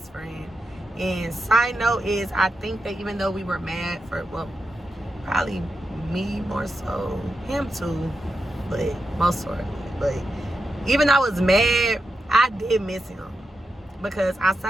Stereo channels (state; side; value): normal; both; correlation 0.88